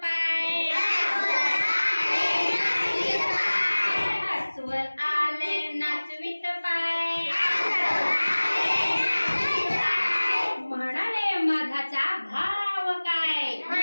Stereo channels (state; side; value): inverted; both; correlation -1.00